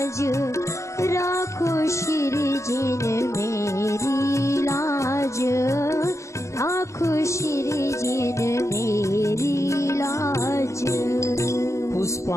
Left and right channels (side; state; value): right; late; 0.14 ms